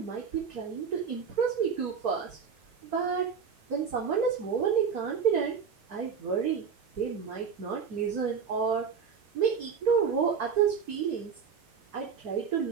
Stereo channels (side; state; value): left; quieter; 6.4 dB